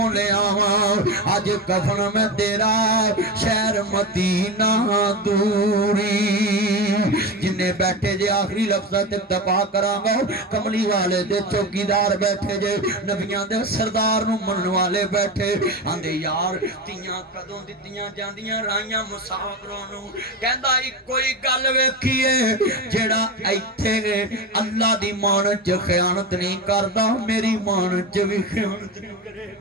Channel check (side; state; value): both; normal; correlation 0.21